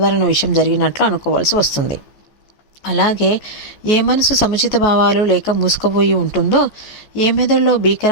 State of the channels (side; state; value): right; late; 14 ms